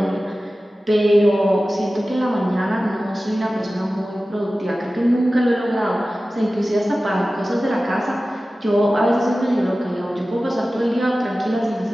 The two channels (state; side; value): normal; both; correlation 0.96